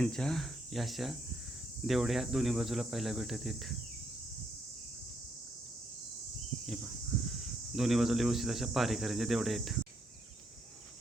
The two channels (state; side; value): normal; both; correlation 0.75